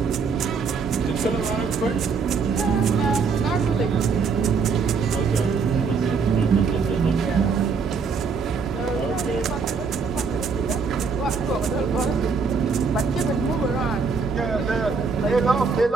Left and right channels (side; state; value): left; quieter; 5.2 dB